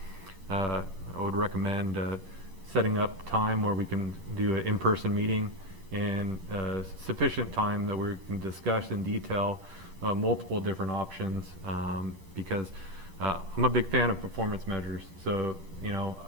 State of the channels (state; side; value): late; left; 11 ms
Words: I would recommend setting up time where we can do an in-person meeting and sufficient time that we can discuss in detail multiple different options because I'm a big fan of performance measures. So, you know,